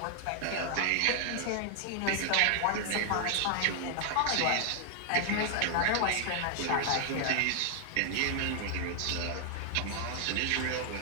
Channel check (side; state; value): both; different; correlation 0.00